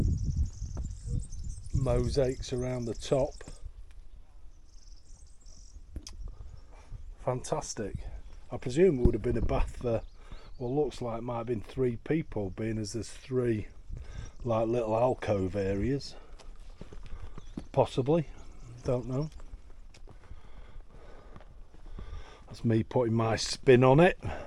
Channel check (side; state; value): both; identical; correlation 1.00